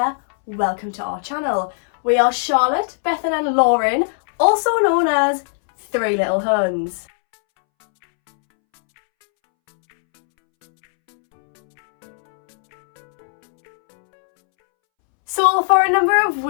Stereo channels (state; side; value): silent; right; 67 dB below the other